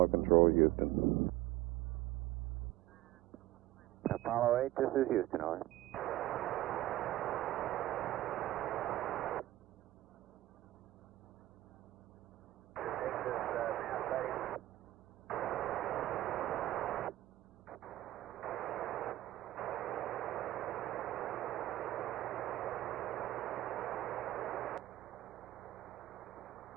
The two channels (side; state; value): left; quieter; 15.8 dB